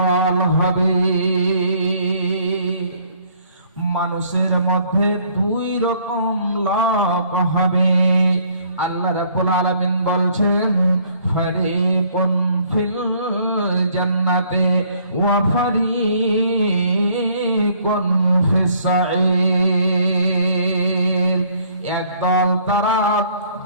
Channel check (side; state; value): both; inverted; correlation -0.62